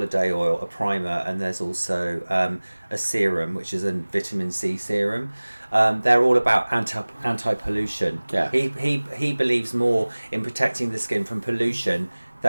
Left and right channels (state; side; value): inverted; both; correlation -1.00